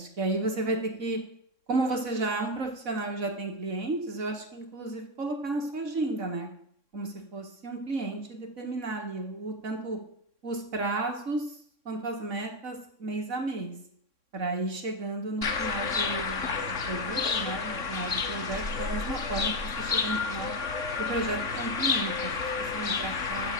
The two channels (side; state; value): left; late; 3.6 ms